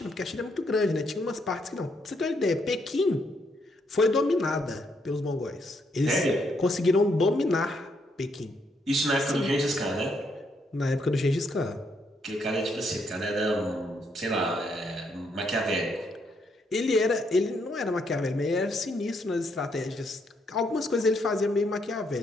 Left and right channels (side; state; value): both; normal; correlation 0.75